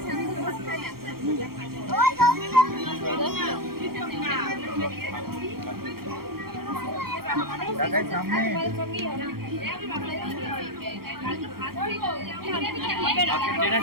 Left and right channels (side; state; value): left; late; 0.94 ms